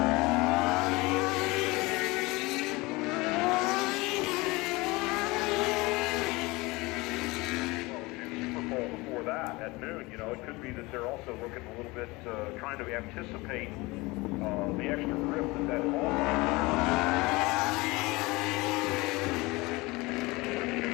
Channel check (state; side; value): quieter; right; 23.0 dB